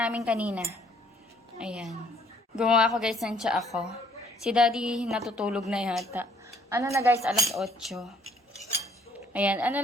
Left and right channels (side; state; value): both; normal; correlation 0.62